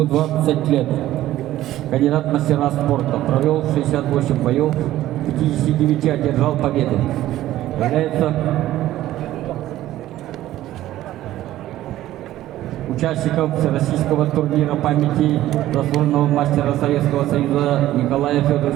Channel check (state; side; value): quieter; left; 14.3 dB